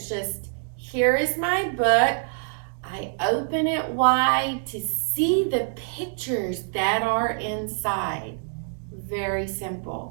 just, here is my book. I open it wide to see the pictures that are inside. Very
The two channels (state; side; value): silent; left; digital silence